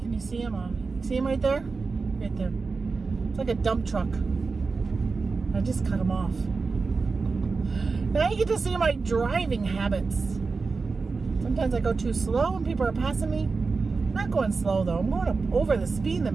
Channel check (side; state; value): left; quieter; 4.4 dB